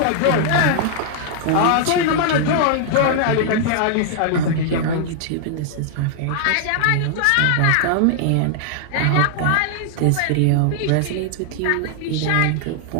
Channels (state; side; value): different; both; correlation -0.01